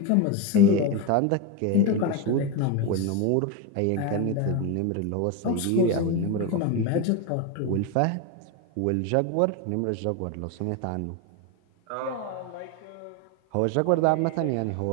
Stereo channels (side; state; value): both; different; correlation 0.03